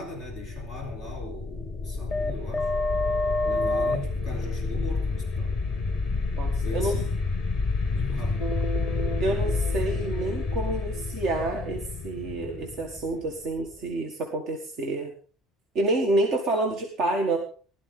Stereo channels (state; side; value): normal; both; correlation 0.63